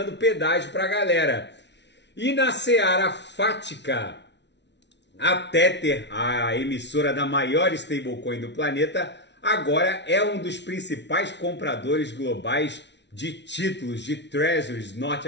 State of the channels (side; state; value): right; late; 0.51 ms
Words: pedágio para a galera. E na seara fática, a Tether, a emissora da maior stablecoin do planeta, agora é um dos principais compradores globais de títulos, de treasuries